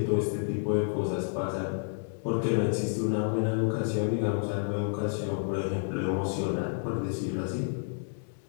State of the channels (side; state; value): right; silent; digital silence